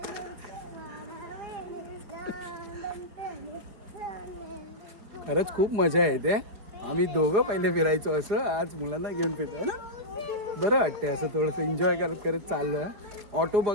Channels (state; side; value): late; left; 4.9 ms